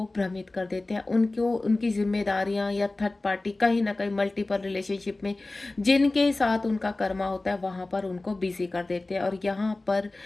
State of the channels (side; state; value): right; quieter; 3.0 dB